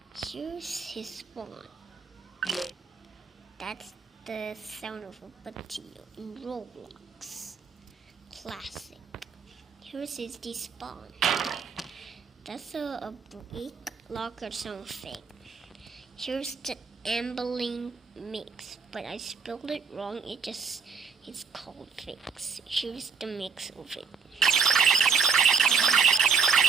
Here's his spawn. That's the sound of a potato in Roblox. Classic. Here's his despawn. That's a brick lock or something. Here's the ambling mix, but I spelled it wrong. It's called fix. Here's the mix of it.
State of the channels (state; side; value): quieter; left; 5.7 dB